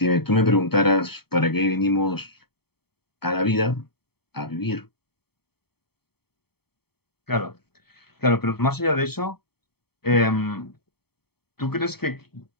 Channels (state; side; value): late; right; 0.96 ms